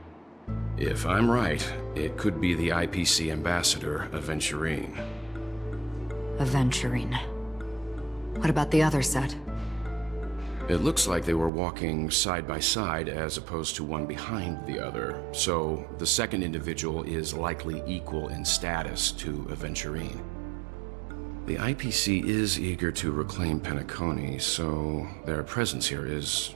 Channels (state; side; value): drops out; left; at 11.5 s